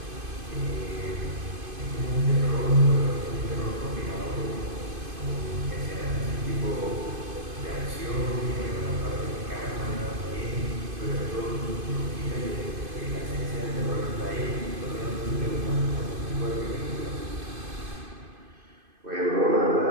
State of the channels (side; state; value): left; late; 2.5 ms